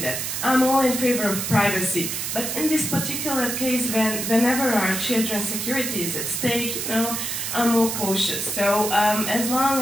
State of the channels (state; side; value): noise; right; hiss, 3 dB below the sound